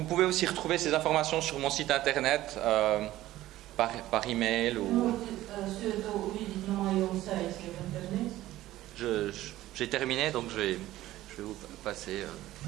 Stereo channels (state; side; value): quieter; left; 15.3 dB